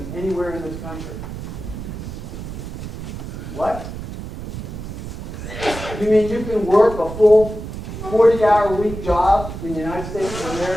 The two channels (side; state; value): right; noise; rumble, 9 dB below the sound